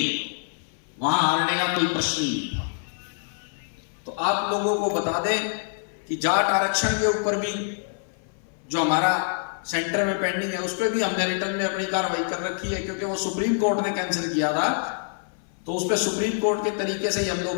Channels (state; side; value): silent; right; 57 dB below the other